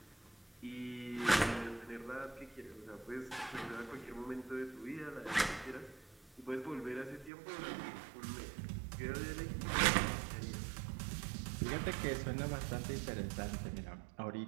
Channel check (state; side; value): drops out; left; at 7.3 s